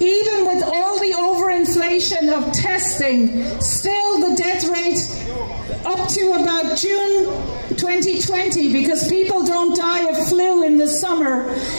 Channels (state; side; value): inverted; both; correlation -1.00